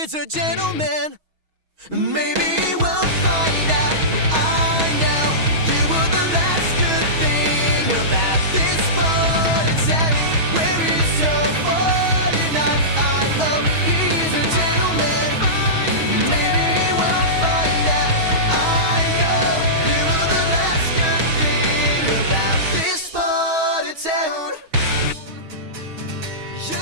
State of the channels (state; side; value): late; left; 6.3 ms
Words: a gentleman. Maybe we'll find out. I know you were the last good thing about this morning town. Where is your 49? I hope he's a gentleman. Maybe we'll find out. I know you were the last good thing about this morning town. You